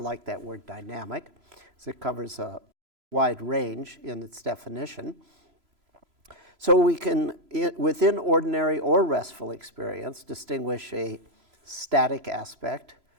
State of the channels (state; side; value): late; left; 3.0 ms